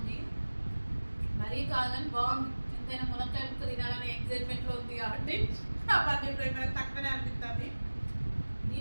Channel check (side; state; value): both; inverted; correlation -1.00